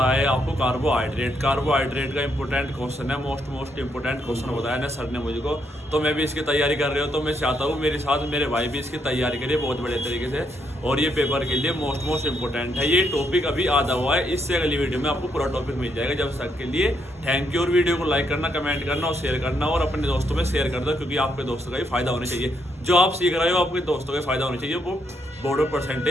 है आपको कार्बोहाइड्रेट का इंपॉर्टेंट क्वेश्चन है, मोस्ट इंपॉर्टेंट क्वेश्चन बताया ना सर ने मुझको। तो मैं भी इसकी तैयारी कर रहा हूँ, तो मैं चाहता हूँ मेरे साथ मेरे भाई भी इसकी तैयारी करिए बहुत बड़े तरीके से, और ये पेपर के लिए मोस्ट इंपॉर्टेंट है। ये टॉपिक अभी आधा हुआ है, इससे अगली वीडियो में आपको पूरा टॉपिक मिल जाएगा। जब तक के लिए थैंक यू, और वीडियो को लाइक करना, कमेंट करना और शेयर करना, और अपने दोस्तों में शेयर कर दो, क्योंकि आपके दोस्तों का भी फायदा होना चाहिए। जो आप सीख रहे हो आपके दोस्तों का फायदा होना चाहिए, वो बोर्ड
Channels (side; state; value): both; normal; correlation 0.76